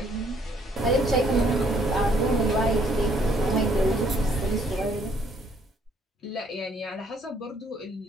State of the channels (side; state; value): both; normal; correlation 0.65